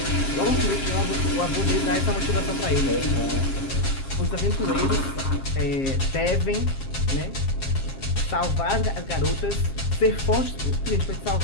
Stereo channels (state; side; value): late; right; 7.4 ms